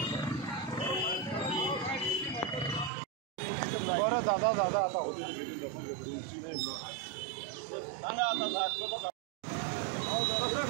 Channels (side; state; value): left; drops out; at 2.9 s